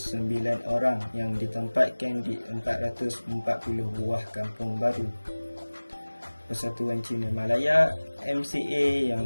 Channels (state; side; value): inverted; both; correlation -1.00